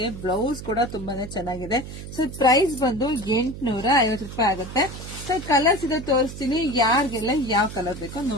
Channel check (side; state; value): right; noise; hum, 11 dB below the sound